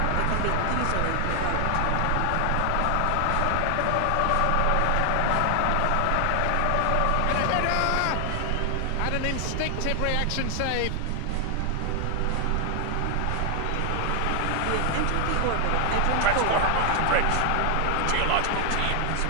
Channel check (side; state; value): both; different; correlation 0.00